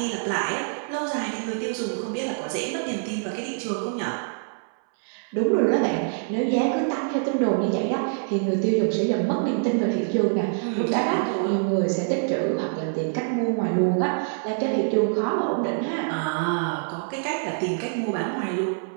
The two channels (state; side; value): silent; left; 62 dB below the other